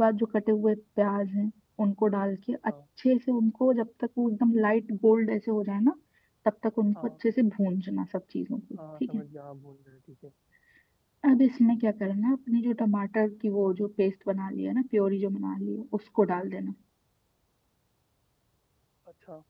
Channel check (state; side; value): identical; both; correlation 1.00